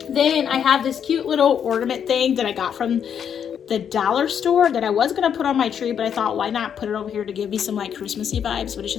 Then I have this cute little ornament thing that I got from the dollar store that I was gonna put on my tree, but I thought, why not put it over here to give me some like Christmassy vibes, but it's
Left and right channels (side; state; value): right; quieter; 8.2 dB